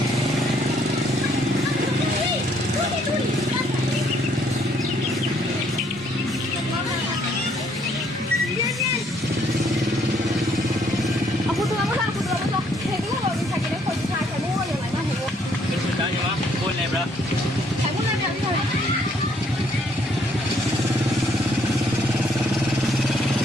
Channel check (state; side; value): normal; both; correlation 0.67